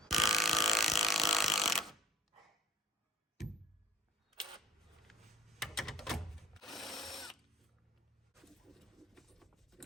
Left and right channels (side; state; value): both; normal; correlation 0.49